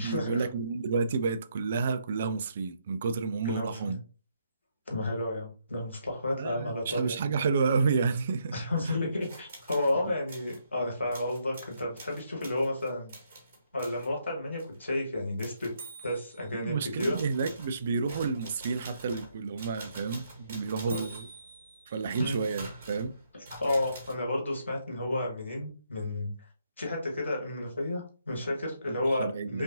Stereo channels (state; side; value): inverted; both; correlation -0.75